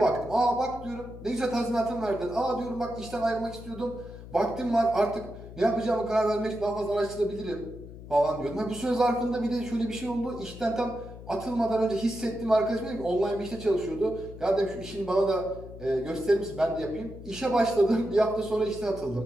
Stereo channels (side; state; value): left; noise; hum, 14 dB below the sound